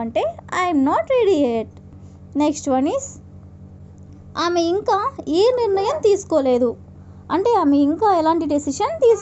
అంటే I'm not ready at. Next one is, ఆమె ఇంకా ఏ నిర్ణయం తీసుకోలేదు అంటే ఆమె ఇంకా ఎలాంటి డెసిషన్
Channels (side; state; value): both; identical; correlation 1.00